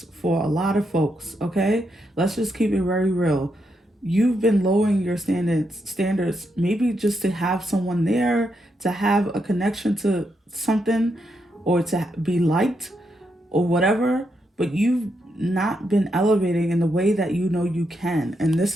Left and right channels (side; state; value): both; normal; correlation 0.81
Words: for a lot of folks, okay? Let's just keep it very real. You've been lowering your standards maybe just to have someone there, to have a connection to something, or to be liked or whatever, but you've not been elevating in the way that you know you can. And this